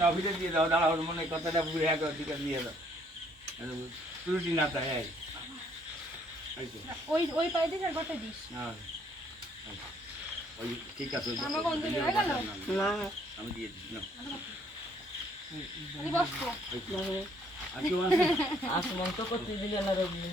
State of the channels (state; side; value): normal; both; correlation 0.65